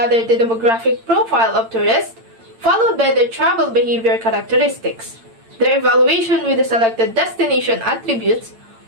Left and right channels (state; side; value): late; left; 8.8 ms